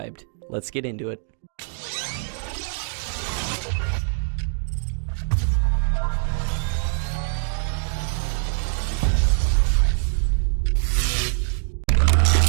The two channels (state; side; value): silent; left; digital silence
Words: Let's get into it.